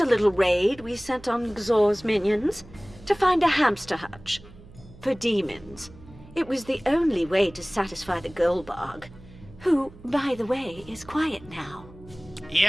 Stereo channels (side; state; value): right; noise; hum, 21 dB below the sound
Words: little raid we sent on Xor's minions to find a hamster hutch. For demons. It was the only way to satisfy the Goldbog, who, by the way, is quiet now.